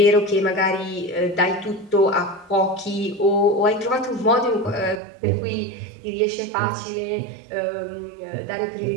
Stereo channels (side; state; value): left; drops out; at 5.0 s